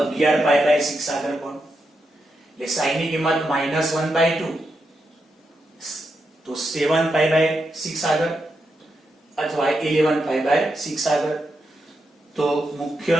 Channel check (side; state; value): both; normal; correlation 0.85